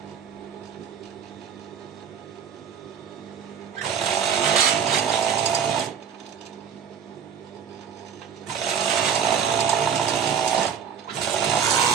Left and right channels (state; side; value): quieter; left; 7.5 dB